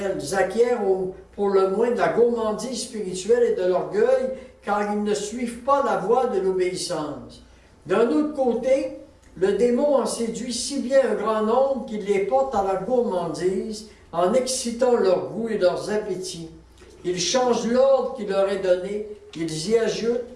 ils acquièrent pour le moins de la gourmandise spirituelle et de l'orgueil, car ils ne suivent pas la voie de l'obéissance. D'un autre côté, le démon en séduit si bien un grand nombre qu'il les porte à la gourmandise en excitant leur goût et leurs appétits. Ils changent l'ordre qu'il leur est donné, ils y ajoutent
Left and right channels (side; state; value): both; identical; correlation 1.00